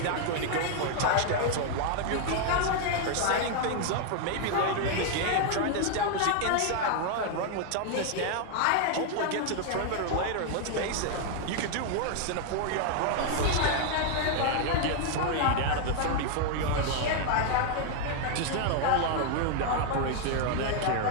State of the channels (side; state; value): both; different; correlation 0.00